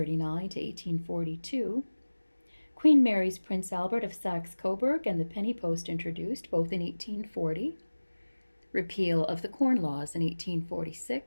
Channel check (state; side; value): inverted; both; correlation -1.00